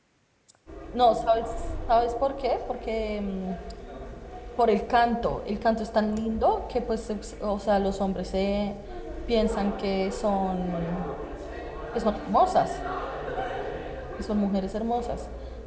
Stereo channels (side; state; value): both; identical; correlation 1.00